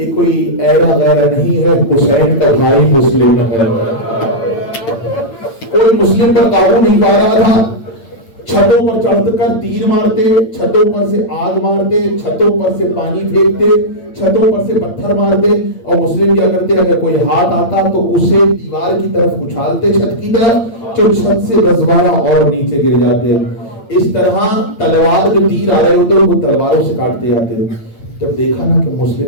کوئی ایرا غیرہ نہیں ہے, حسین کا بھائی مسلم ہے. کوئی مسلم پر قابو نہیں پا رہا تھا. چھتوں پر چڑھ کر تیر مارتے, چھتوں پر سے آگ مارتے, چھتوں پر سے پانی پھینکتے, چھتوں پر سے پتھر مارتے. اور مسلم کیا کرتے, اگر کوئی ہاتھ آتا تو اسے دیوار کی طرف اچھالتے, چھت کی طرف, جو چھت سے 10-12 اور نیچے گر جاتے. اس طرح تلوار جو تیر آ رہے ہوتے وہ تلواروں سے کاٹتے جاتے. جب دیکھا نا کہ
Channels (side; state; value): right; late; 8.8 ms